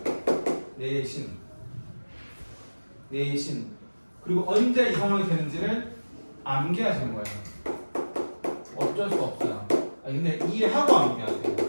내신 그리고 언제 이 상황이 되는지를 암기하시는 거예요. 어쩔 수 없어요. 근데 이해하고 암기하세요.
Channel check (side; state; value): both; inverted; correlation -1.00